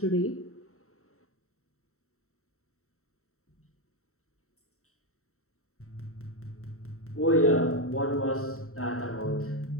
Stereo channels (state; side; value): late; right; 0.63 ms